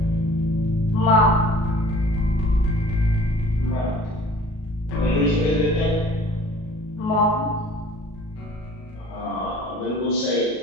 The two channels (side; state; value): right; late; 37 ms